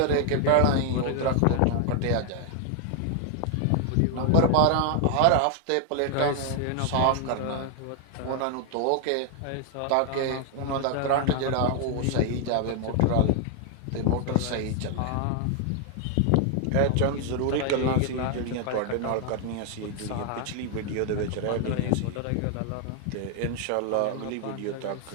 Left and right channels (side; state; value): both; different; correlation 0.00